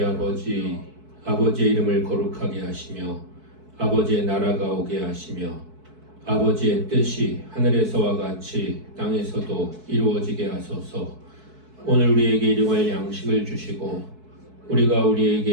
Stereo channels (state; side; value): late; left; 4.6 ms